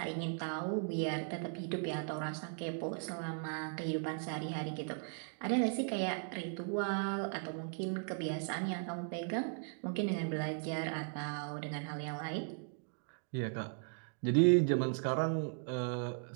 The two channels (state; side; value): silent; left; 53 dB below the other